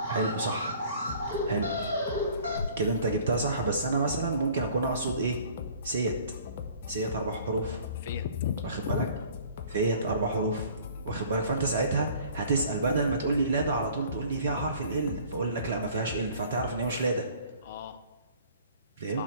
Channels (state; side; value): inverted; both; correlation -0.52